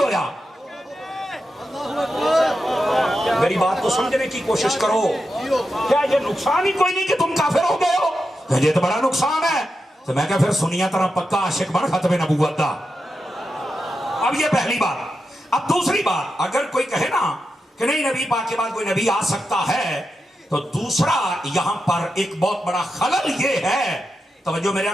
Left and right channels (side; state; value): both; normal; correlation 0.88